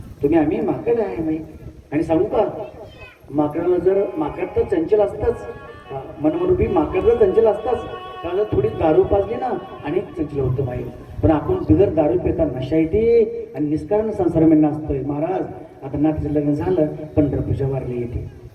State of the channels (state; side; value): identical; both; correlation 1.00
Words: तुम्ही आम्ही माकड आहे माई. आणि सांगू का, माकडाला जर माकड तर चंचल असतंच, मनमरूपी माकड तर चंचल असताच. त्याला थोडी दारू पाजली ना आणि चंचल होतं माई. पण आपण बिगर दारू पिता नशा येते आणि निष्कारण संसार में नाचतोय. महाराज आता नातीचं लग्न झालं, पंढरपूरच्या वारली येते